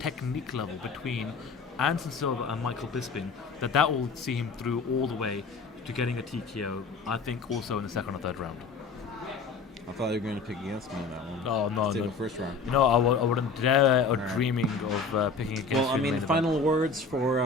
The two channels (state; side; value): quieter; right; 4.5 dB